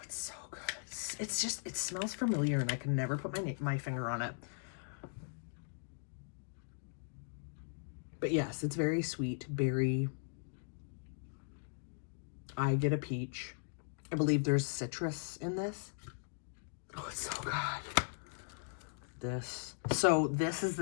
it's so good. It's just, it smells familiar, and I can never put my finger on it. But yes, it's very sweet, berry. I get a peach. I believe there's citrus in this. Oh, it's so good. So this is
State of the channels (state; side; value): silent; right; digital silence